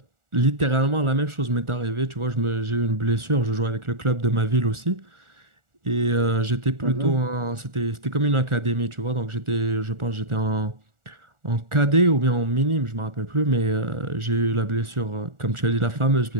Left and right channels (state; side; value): late; left; 1.4 ms